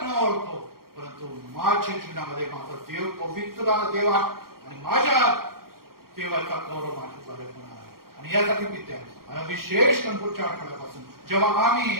न ओळखो, परंतु माझ्या जीवनामध्ये माझा देव पवित्र देवा आणि माझ्या देवाचा गौरव माझ्याद्वारे होणार आहे. आणि यासाठी विद्या विशेष पुढच्या आठवड्यापासून जेव्हा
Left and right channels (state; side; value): late; left; 0.93 ms